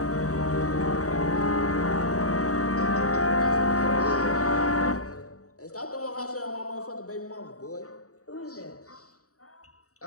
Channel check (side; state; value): right; late; 0.66 ms